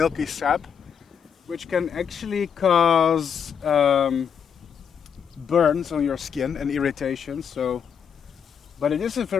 sap, which can actually cause burns on your skin and irritations. But it is a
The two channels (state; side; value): quieter; right; 7.4 dB